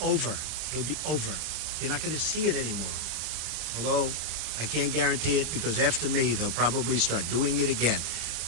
over. It'll be over. You're not going to see it anymore. Although I can't guarantee it, because after me, they'll probably start doing it again.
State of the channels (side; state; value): left; late; 26 ms